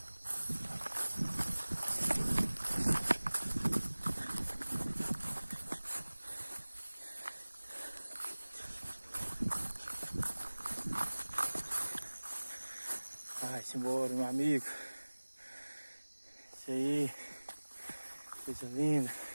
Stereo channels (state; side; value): inverted; both; correlation -1.00